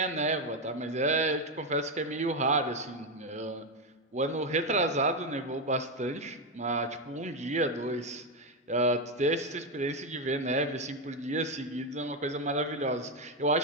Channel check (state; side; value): normal; both; correlation 0.08